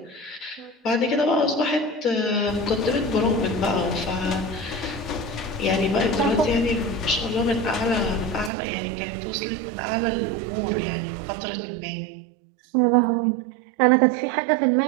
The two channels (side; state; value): left; drops out; at 8.5 s